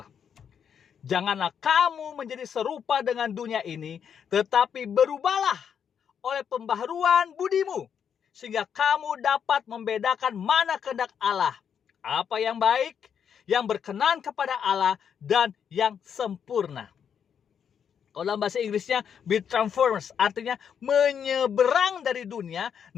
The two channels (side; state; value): right; quieter; 7.8 dB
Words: Janganlah kamu menjadi serupa dengan dunia ini, tetapi berubahlah oleh pembaharuan budimu, sehingga kamu dapat membedakan mana kehendak Allah, apa yang baik, yang berkenan kepada Allah, dan yang sempurna. Kalau dalam bahasa Inggrisnya be transformed, artinya menyeberang dari dunia,